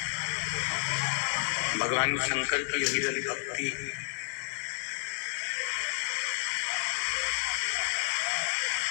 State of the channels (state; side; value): silent; right; digital silence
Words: भगवान शंकर की विरल भक्ति